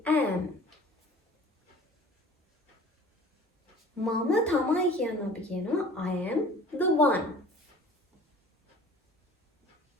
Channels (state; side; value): normal; both; correlation 0.47